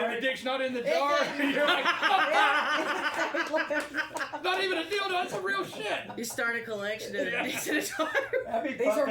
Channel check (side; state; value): both; identical; correlation 1.00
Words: hard? the dick's not in the jar, you're like, Yeah. not even a dildo, that's some real shit. You start a collection of Yeah. dicks at a time. that'd be These are fucked